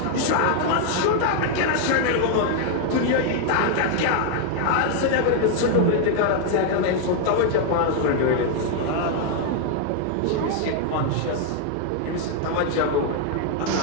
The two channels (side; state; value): both; different; correlation 0.00